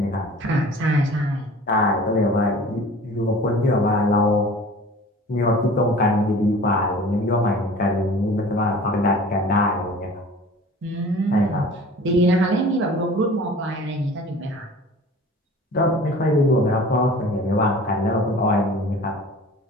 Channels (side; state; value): both; normal; correlation 0.44